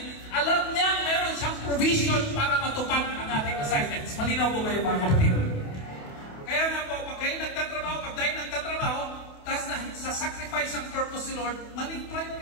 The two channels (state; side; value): late; right; 28 ms